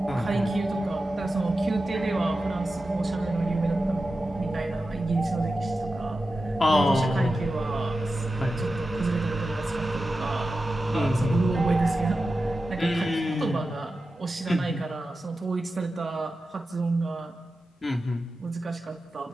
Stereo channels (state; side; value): normal; both; correlation 0.92